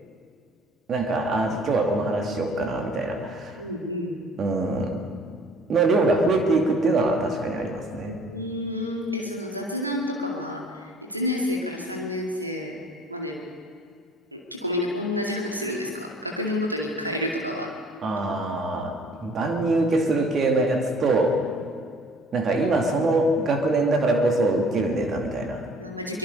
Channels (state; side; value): normal; both; correlation 0.53